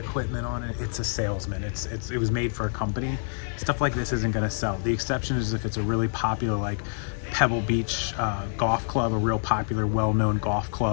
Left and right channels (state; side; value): silent; right; digital silence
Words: on it? It's a salesman. It was made for a company. Stuff like this isn't going to sell. The exception is if it's a really popular, like Pebble Beach golf club, a real popular, well-known golf